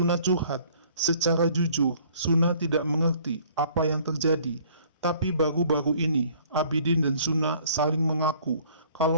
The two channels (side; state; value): both; inverted; correlation -0.56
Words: curhat. Secara jujur, Suna tidak mengerti apa yang terjadi. Tapi baru-baru ini, Abidin dan Suna saling mengaku